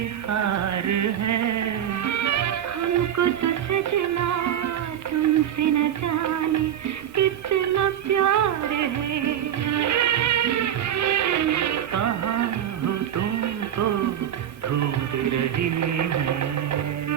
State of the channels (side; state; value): left; quieter; 10.2 dB